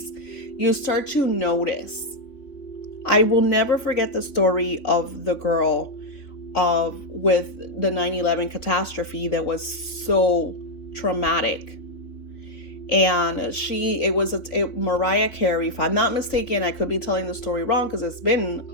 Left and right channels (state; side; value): late; right; 3.5 ms